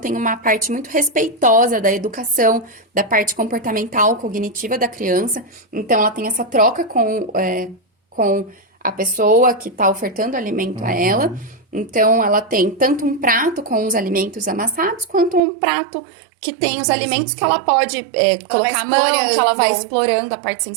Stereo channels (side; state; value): left; drops out; at 15.4 s